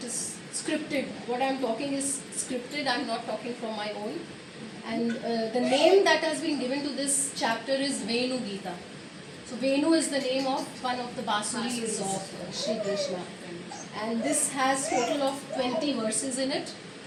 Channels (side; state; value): both; identical; correlation 1.00